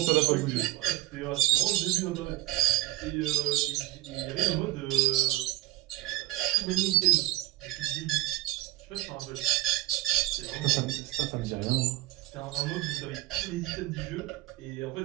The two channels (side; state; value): left; quieter; 16.9 dB